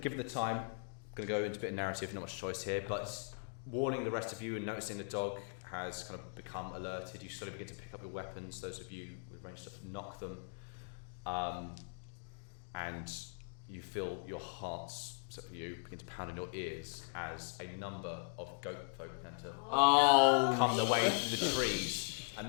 the time, I'm going to go into a bit of narrative. Not much choice here, but warning the rest of you and noticing the dog has kind of become alerted. You slowly begin to pick up your weapons. Those of you with ranged stuff knock them, and you feel your hearts, except for you, begin to pound in your ears as a number of goat folk begin to come their way through the trees. And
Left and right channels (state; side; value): silent; right; digital silence